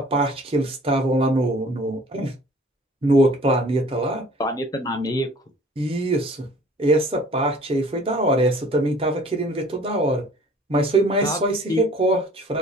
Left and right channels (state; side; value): normal; both; correlation 0.51